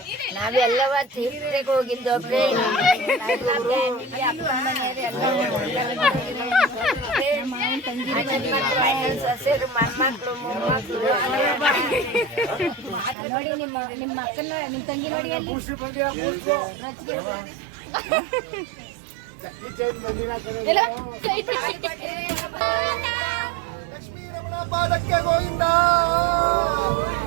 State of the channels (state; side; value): drops out; left; at 13.2 s